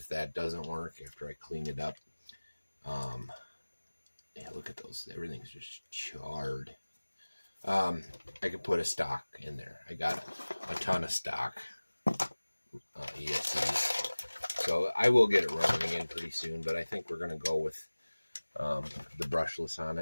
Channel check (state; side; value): inverted; both; correlation -1.00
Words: that doesn't work after I clean it up. Yeah, look at those. Everything's just charred. I could put a stock in there. I got a ton of stock ESCs. So I will get it running again pretty soon, but I think we're going to go with the brushless on